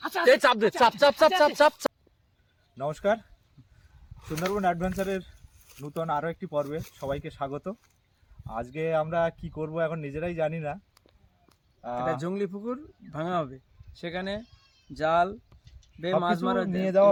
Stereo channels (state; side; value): identical; both; correlation 1.00